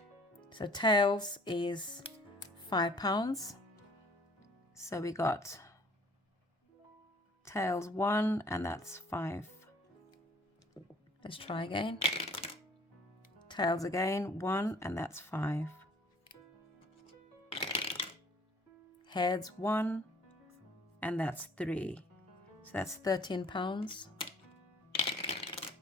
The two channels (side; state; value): both; normal; correlation 0.56